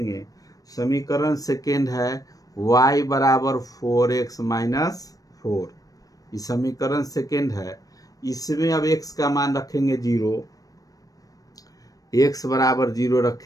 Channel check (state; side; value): late; right; 0.18 ms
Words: समीकरण सेकेंड है y बराबर 4x माइनस 4, ये समीकरण सेकेंड है। इसमें अब x का मान रखेंगे 0, x बराबर 0